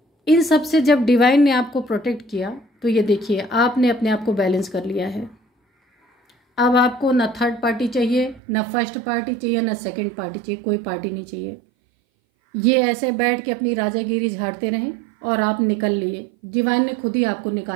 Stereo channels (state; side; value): drops out; left; at 8.4 s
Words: इन सब से जब डिवाइन ने आपको प्रोटेक्ट किया, तो ये देखिए आपने अपने आप को बैलेंस कर लिया है। अब आपको ना थर्ड पार्टी चाहिए, ना फर्स्ट पार्टी चाहिए, ना सेकंड पार्टी चाहिए, कोई पार्टी नहीं चाहिए। ये ऐसे बैठ के अपनी राजागिरी झाड़ते रहें और आप निकल लिए। डिवाइन ने खुद ही आपको